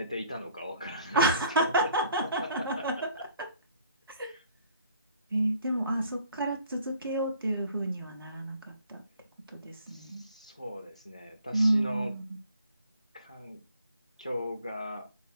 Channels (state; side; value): inverted; both; correlation -0.57